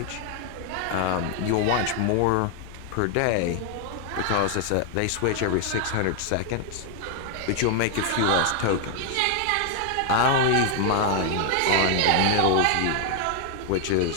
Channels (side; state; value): both; different; correlation 0.00